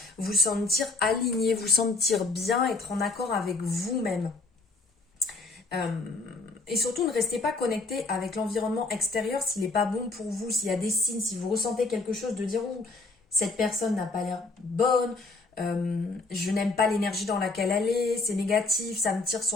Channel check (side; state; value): right; quieter; 3.5 dB